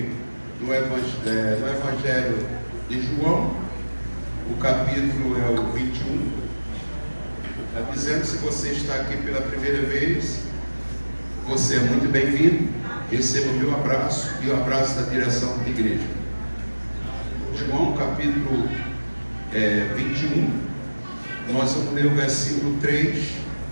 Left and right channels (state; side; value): inverted; both; correlation -1.00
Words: do Evangelho de João. O capítulo é o 21. Está dizendo, se você está aqui pela primeira vez, você é muito bem-vindo. Receba o meu abraço e o abraço da direção da igreja. João capítulo 21. Nós vamos ler o versículo 3,